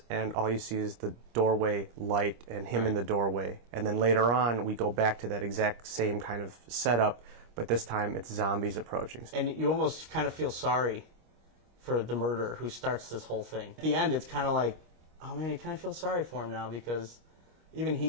and all you see is the doorway light and him in the doorway. And then later on, we go back to that exact same kind of setup, but this time it's zombies approaching. And you almost kind of feel sorry for the murderer who starts this whole thing. At the end, it's kind of like, oh man, you kind of feel sorry for him now, because even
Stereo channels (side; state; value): left; late; 25 ms